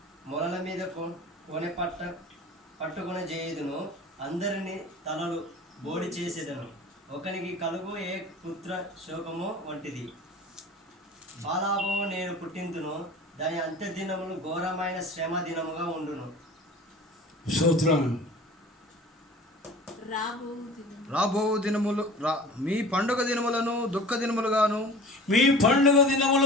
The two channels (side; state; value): both; normal; correlation 0.41